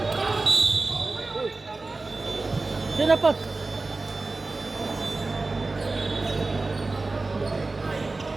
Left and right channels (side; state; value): left; quieter; 3.4 dB